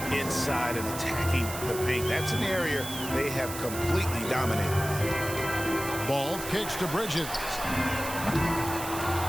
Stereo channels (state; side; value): noise; right; hiss, 9 dB below the sound